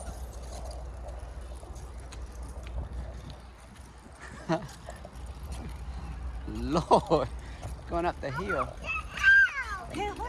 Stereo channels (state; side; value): identical; both; correlation 1.00